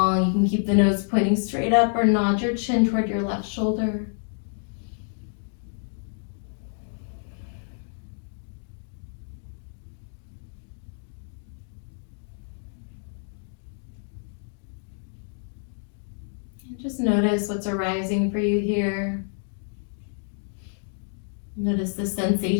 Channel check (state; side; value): silent; right; digital silence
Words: You can keep the nose pointing straight up or nod your chin toward your left shoulder. Just notice what's arising for you here. Notice the